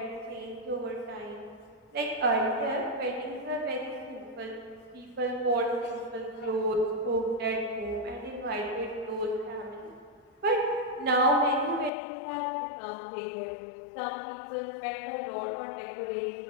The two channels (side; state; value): right; drops out; at 11.9 s